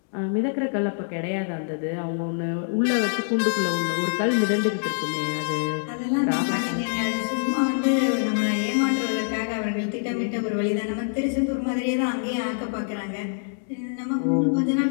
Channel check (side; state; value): right; silent; digital silence